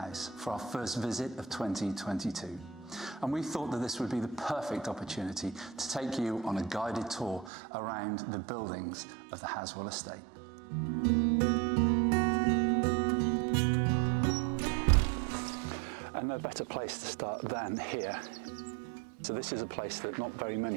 for our first visit of 2022. And we thought that this would be the perfect opportunity to take you on a guided tour around the buildings of the Halswell Estate. And no better place to start than here. So this is a place that not very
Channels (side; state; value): left; drops out; at 7.5 s